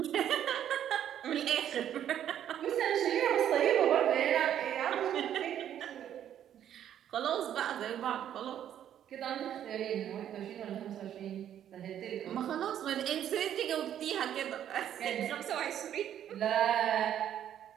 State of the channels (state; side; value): quieter; left; 10.3 dB